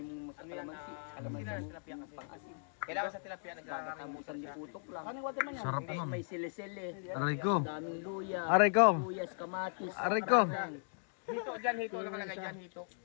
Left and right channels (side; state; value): right; silent; digital silence